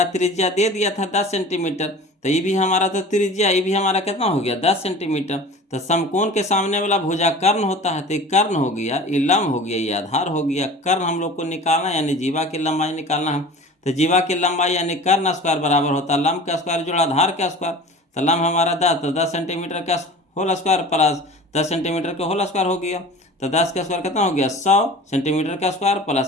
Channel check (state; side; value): normal; both; correlation 0.39